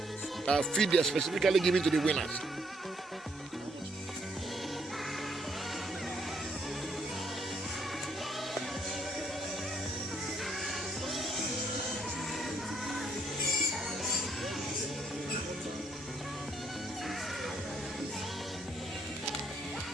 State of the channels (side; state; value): both; normal; correlation 0.70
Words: feed they are specifically giving to the winners.